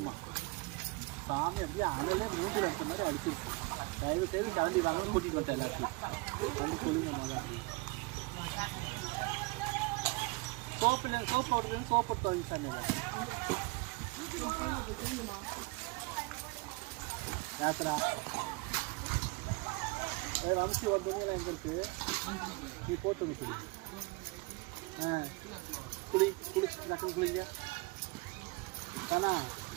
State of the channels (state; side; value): quieter; left; 26.3 dB